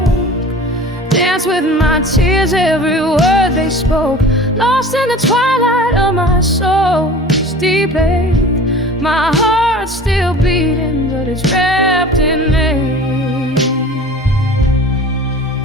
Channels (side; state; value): both; normal; correlation 0.42